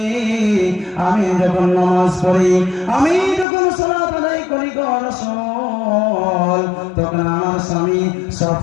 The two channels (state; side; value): drops out; right; at 3.5 s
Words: আমি যখন নামাজ পড়ি, আমি যখন সালাত আদায় করি গো রাসূল, তখন আমার স্বামী